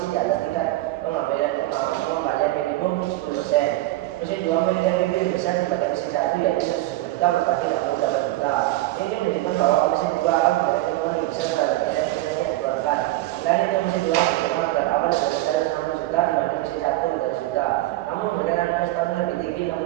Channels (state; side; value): quieter; left; 17.3 dB